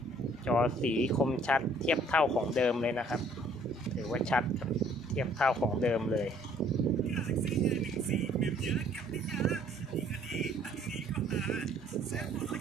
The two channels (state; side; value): normal; both; correlation 0.60